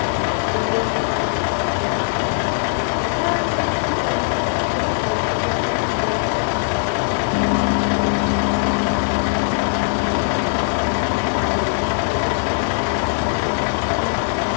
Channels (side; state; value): right; silent; digital silence